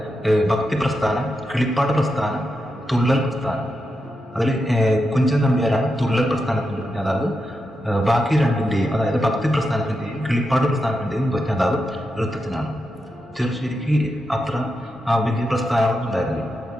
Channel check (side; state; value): both; normal; correlation 0.86